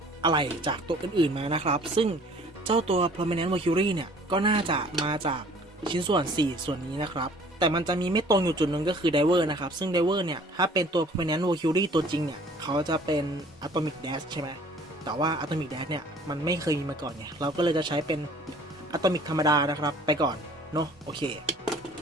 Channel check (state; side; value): normal; both; correlation 0.53